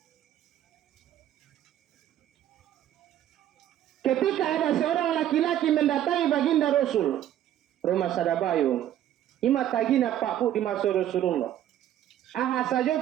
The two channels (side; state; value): left; quieter; 11.7 dB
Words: Ketika ada seorang laki-laki mendatangi baginda Rasul, rumah Sadabayung, ima tagina Pak Bu di masa Rasulullah. Aha